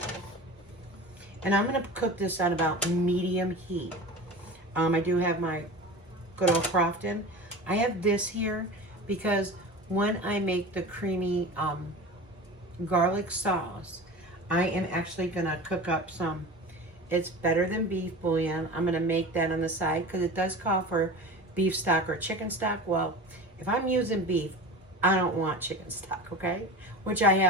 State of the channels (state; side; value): normal; both; correlation 0.33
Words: And I'm gonna cook this on about medium heat. I do have my good old Crofton. I have this here because when I make the creamy garlic sauce, I am actually gonna cook up some, it's better than beef bouillon. I'm gonna make that on the side because it does call for beef stock or chicken stock. Well, if I'm using beef, I don't want chicken stock, okay? Which I